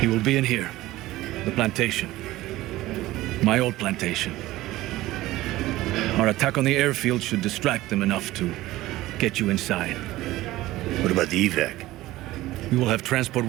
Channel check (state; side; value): quieter; left; 17.0 dB